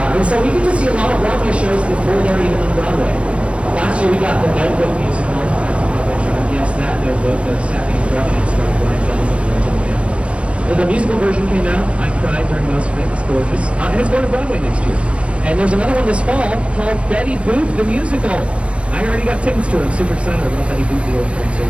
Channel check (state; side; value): late; left; 0.060 ms